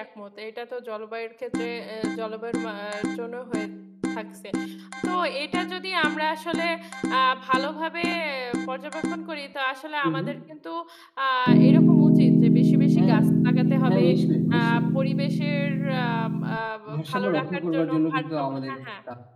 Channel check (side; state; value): both; identical; correlation 1.00